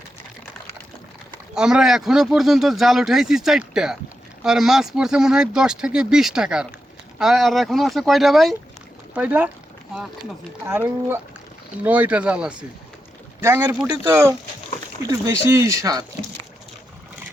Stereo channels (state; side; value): normal; both; correlation 0.87